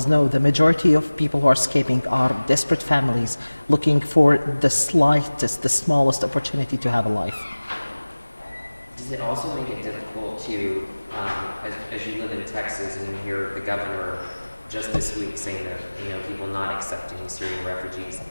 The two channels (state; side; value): inverted; both; correlation -1.00